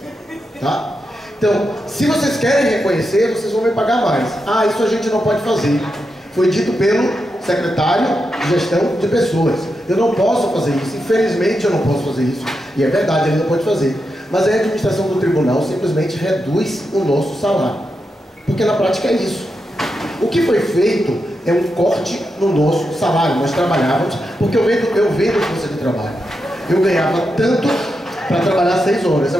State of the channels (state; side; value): normal; both; correlation 0.86